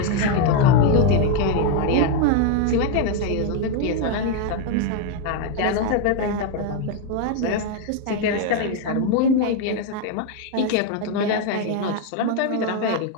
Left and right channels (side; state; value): both; different; correlation 0.01